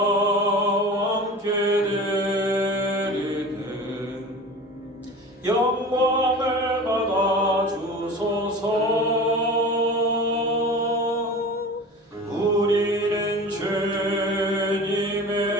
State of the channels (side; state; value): both; normal; correlation 0.36